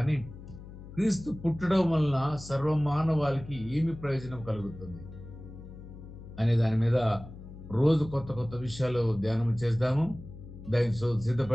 క్రీస్తు పుట్టడం వలన సర్వమానవాళికి ఏమి ప్రయోజనం కలుగుతుంది అనే దాని మీద రోజు కొత్త కొత్త విషయాలు ధ్యానం చేద్దాము. దానికి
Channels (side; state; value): left; noise; hum, 15 dB below the sound